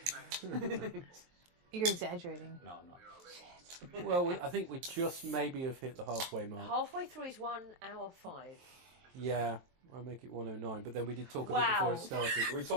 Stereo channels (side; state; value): left; late; 23 ms